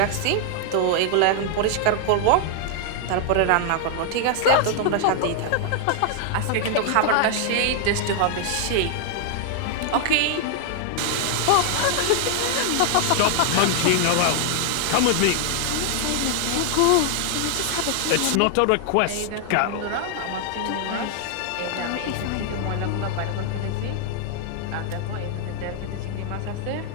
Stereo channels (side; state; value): both; different; correlation 0.00